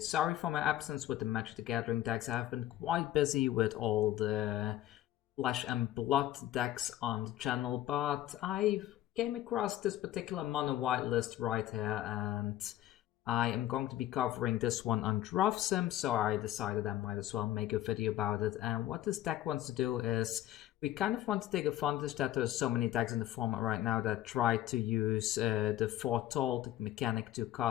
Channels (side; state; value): right; quieter; 13.9 dB